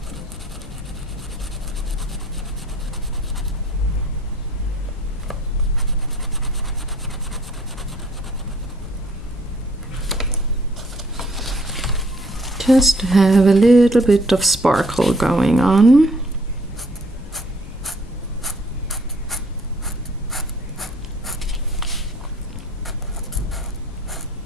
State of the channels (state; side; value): noise; left; rumble, 15 dB below the sound